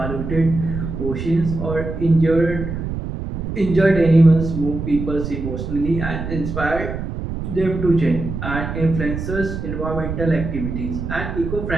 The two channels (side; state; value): right; noise; rumble, 5 dB below the sound